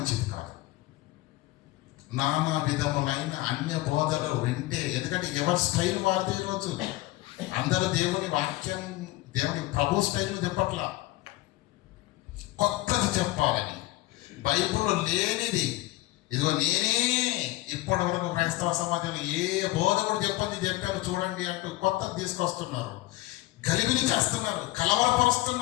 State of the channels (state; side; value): quieter; right; 18.1 dB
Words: కాదు. నానా విధములైన అన్య బోధలు వింటే, ఎందుకంటే ఎవరి స్టైల్ వారిది. ఈరోజు అందరూ దేవుని వాక్యం, దేవుని ప్రభు స్టైల్ను చెప్పట్లా, కొత్తది చెప్పాలని, బైబిల్లో లేనిది. ఇదిగో నేనే ఇప్పటి వరకు క్రైస్తవ సమాజంలో ఏ బోధకుడు చెప్పాను చూడండి అంటూ కొత్తది తీసుకొస్తున్నారు, గలిబిలి చేస్తున్నారు,